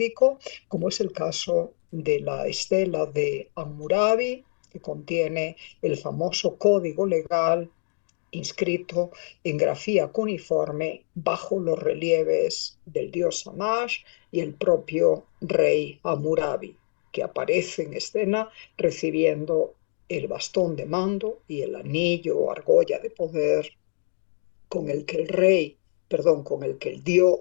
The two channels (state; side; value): silent; right; digital silence